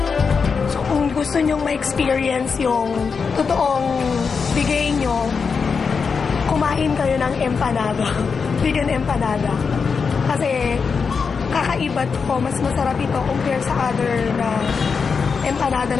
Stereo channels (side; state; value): right; quieter; 5.5 dB